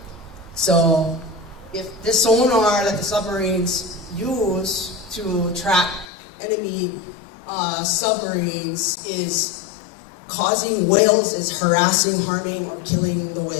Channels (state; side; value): drops out; right; at 6.1 s